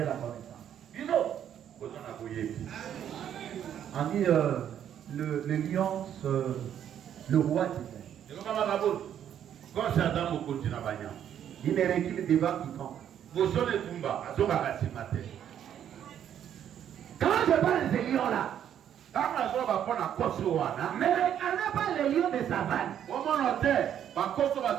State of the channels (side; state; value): left; quieter; 9.8 dB